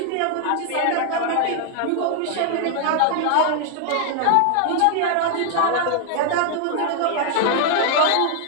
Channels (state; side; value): different; both; correlation 0.00